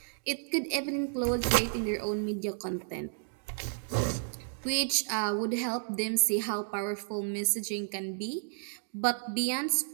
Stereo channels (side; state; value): left; silent; digital silence